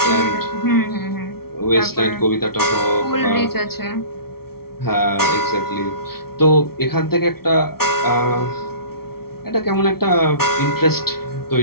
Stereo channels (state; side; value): late; right; 0.94 ms